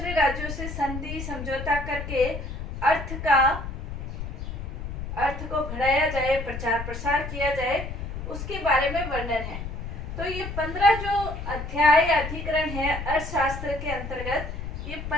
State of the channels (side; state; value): left; noise; rumble, 7 dB below the sound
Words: राज्यों से संधि समझौता करके अर्थ को बढ़ाया जाए, प्रचार प्रसार किया जाए, उसके बारे में वर्णन है। तो ये 15 जो अध्याय अधिकरण है अर्थशास्त्र के अंतर्गत, ये